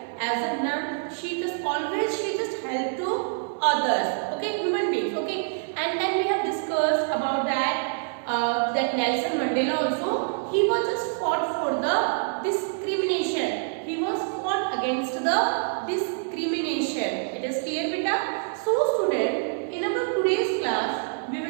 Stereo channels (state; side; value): silent; left; digital silence